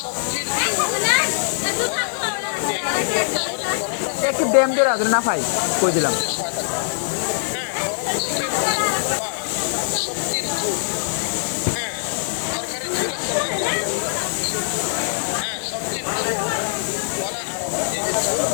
সবজির ঝোল গলা আরাম দেয়, শরীর গরম রাখে, একটু ড্যাম দিয়ে রাখবেন না ভাই, কই দিলাম। প্রতিরোধে সহায়তা করে। গরম চিকেন স্যুপ বা সবজির ঝোল, তরকারির ঝোল আছে না, এই ঝোলের কথা বলা হচ্ছে। সবজির ঝোল গলা আরাম, এই যে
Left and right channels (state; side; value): silent; right; digital silence